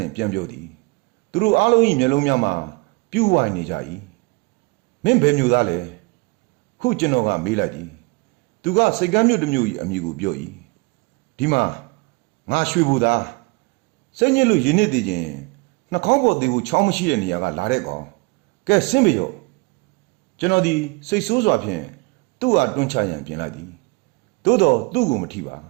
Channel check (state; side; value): quieter; left; 27.8 dB